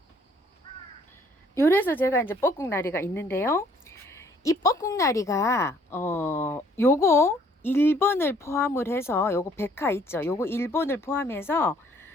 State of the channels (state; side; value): normal; both; correlation 0.61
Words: 요래서 제가 이제 뻐꾹나리가 있는데요. 이 뻐꾹나리가 요거 1번을 포함을 해서 요거 백화 있죠. 요거 1번을 포함해서